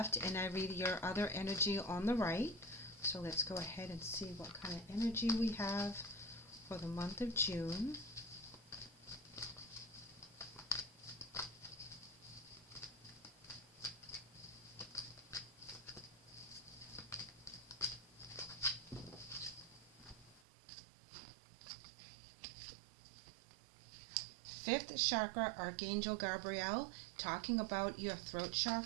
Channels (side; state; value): left; drops out; at 20.4 s